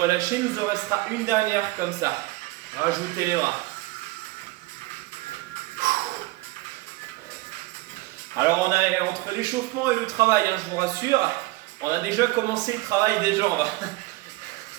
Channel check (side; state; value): left; quieter; 20.9 dB